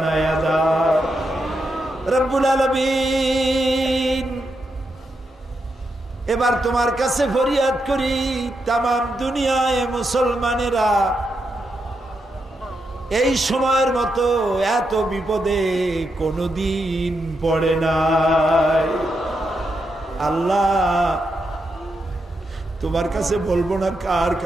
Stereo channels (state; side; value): normal; both; correlation 0.84